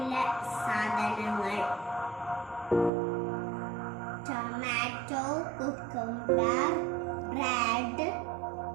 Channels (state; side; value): drops out; left; at 2.9 s